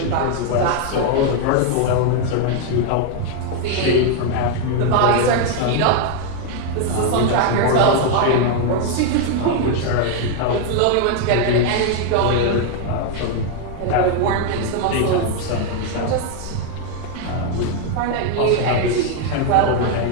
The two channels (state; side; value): different; both; correlation 0.00